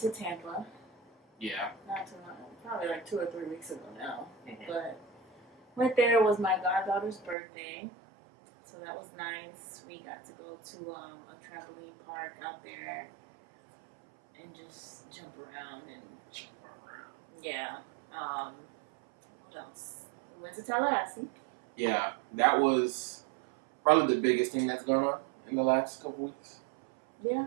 Tampa. Yeah. Not too long, probably 2 or 3 weeks ago now. Mm-hmm. But went there, it was my goddaughter's birthday. So that was nice. We got to go to a trampoline park out there and just jump around. Yeah. What else? We went to Tallahassee. Yeah, that was probably the biggest thing that's going on in the last couple weeks.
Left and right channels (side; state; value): left; drops out; at 7.4 s